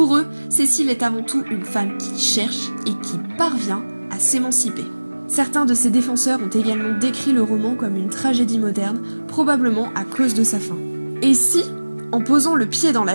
eux, Cécile est avant tout une femme qui cherche et qui parvient à s'émanciper. Certains de ses défenseurs ont également décrit le roman comme une tragédie moderne, probablement à cause de sa fin. Et si, en posant le pied dans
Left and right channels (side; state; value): both; inverted; correlation -1.00